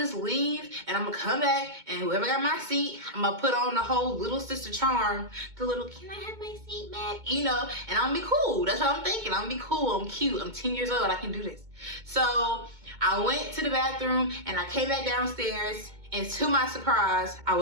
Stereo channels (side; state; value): left; late; 2.2 ms